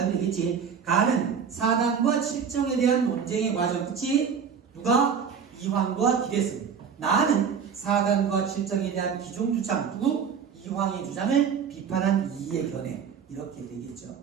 되겠지. 가는 사단과 칠정에 대한 논쟁의 과정. 그치? 누가? 이황과 기대승. 나는 사단과 칠정에 대한 기존 주장. 누구? 이황의 주장을 비판한 이의 견해. 이렇게 되겠죠.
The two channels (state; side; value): quieter; left; 6.8 dB